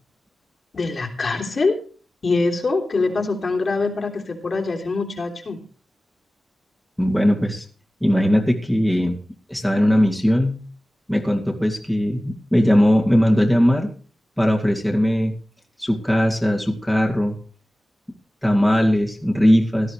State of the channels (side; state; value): both; normal; correlation 0.97